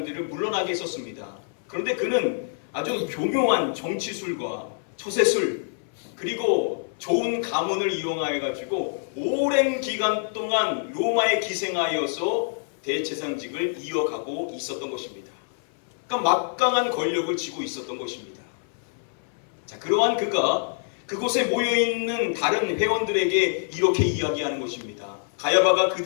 물러나게 했었습니다. 그런데 그는 아주 교묘한 정치술과 처세술, 그리고 좋은 가문을 이용하여 가지고 오랜 기간 동안 로마에 기생하여서 대제사장직을 이어가고 있었던 것입니다. 그러니까 막강한 권력을 쥐고 있었던 것입니다. 자, 그러한 그가 그곳에 모여있는 다른 회원들에게 이렇게 이야기하는 것입니다. 가야바가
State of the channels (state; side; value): silent; right; 57 dB below the other